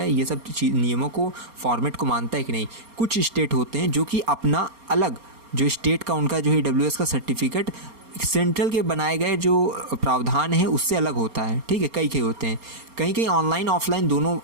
ये सब नियमों को, फॉर्मेट को मानता है कि नहीं। कुछ स्टेट होते हैं जो कि अपना अलग जो स्टेट का उनका जो है EWS का सर्टिफिकेट सेंट्रल के बनाए गए जो प्रावधान है उससे अलग होता है, ठीक है। कई होते हैं, कहीं ऑनलाइन ऑफलाइन दोनों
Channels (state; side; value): late; left; 4.3 ms